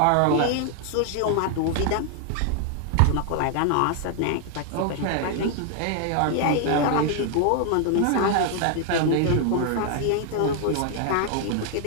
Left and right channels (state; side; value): different; both; correlation 0.00